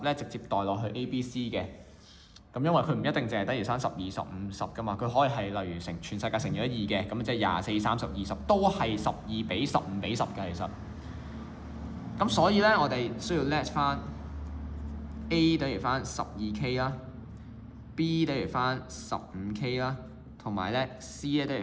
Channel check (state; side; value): identical; both; correlation 1.00